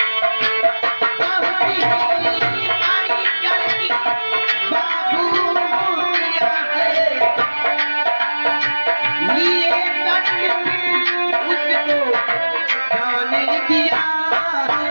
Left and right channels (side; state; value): both; inverted; correlation -1.00